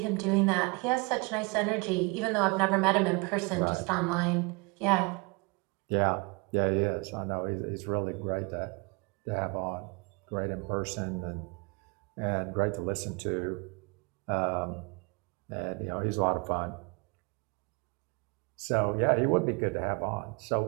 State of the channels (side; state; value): left; quieter; 28.9 dB